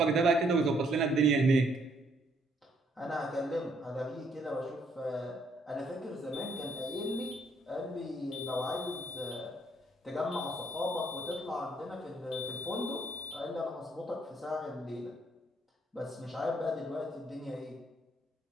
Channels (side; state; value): both; normal; correlation 0.68